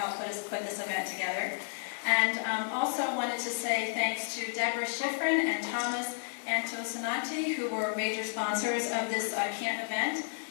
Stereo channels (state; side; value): silent; right; digital silence